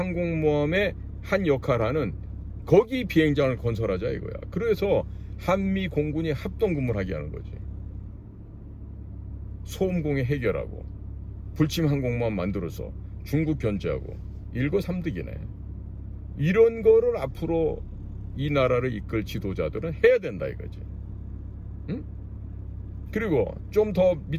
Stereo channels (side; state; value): both; identical; correlation 1.00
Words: 한 역할하는 거기 비행장을 건설하자 이거야. 그래서 한미 공군이 합동근무를 하게 하는 거지. 소음공해 해결하고 불침 항공모함 만들어서 중국 견제하고 일거삼득이네. 이런 거를 앞으로 이 나라를 이끌 지도자들은 해야 된다 이거지. 응? 그리고 좀 더